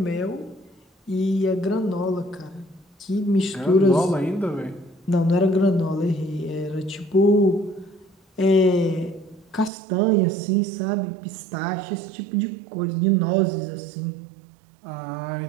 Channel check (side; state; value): left; drops out; at 9.7 s